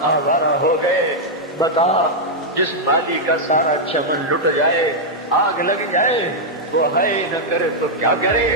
آوارہ ہو گئے۔ بتا جس مالی کا سارا چمن لٹ جائے، آگ لگ جائے، وہ ہے نہ کرے تو کیا کرے؟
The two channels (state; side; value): normal; both; correlation -0.03